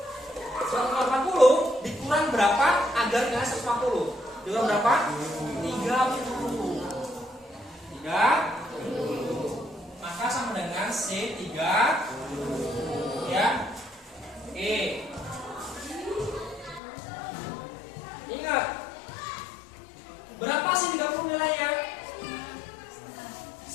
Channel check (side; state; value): right; drops out; at 16.8 s